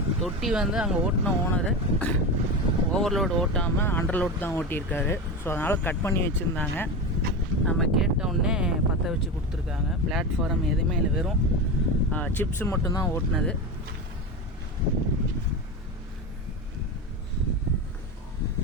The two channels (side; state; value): both; normal; correlation 0.22